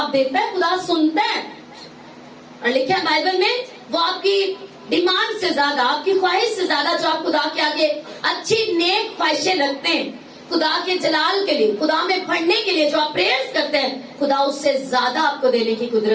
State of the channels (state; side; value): identical; both; correlation 1.00